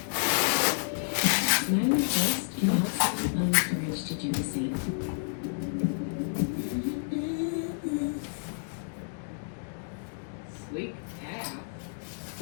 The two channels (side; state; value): right; silent; digital silence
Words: My request, you also find the courage to do the same. Sleep half.